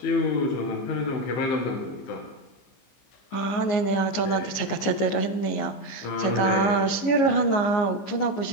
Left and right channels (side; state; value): right; late; 15 ms